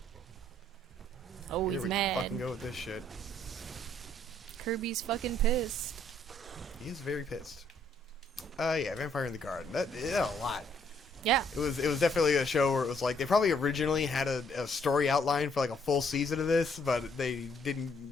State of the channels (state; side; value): normal; both; correlation 0.67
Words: Oh, Here he's we mad. fucking go with this shit. Kirby's fucking pissed. He is very pissed. Yeah, Vampire in the Garden. That a lot. Yeah. It was definitely a show where it was like they probably originally had a story outline for like a full season of this, but they